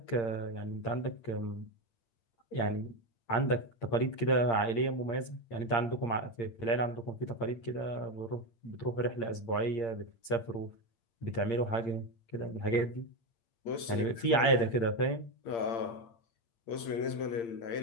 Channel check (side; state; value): right; late; 8.7 ms